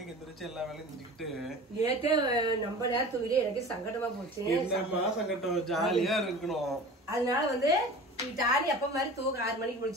எந்திரிச்சு எல்லா வேலையும் செஞ்சுக்கிட்டு. நேத்தே நம்ம நேரம் தூங்கிட்டு எனக்கு சங்கடமா போச்சு. என்னமா சங்கடம், ஜாலியா இருக்கணும். அதனால வந்து டாலி அப்ப மாதிரி தூங்க 6 மணிக்கு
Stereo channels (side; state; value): both; normal; correlation 0.38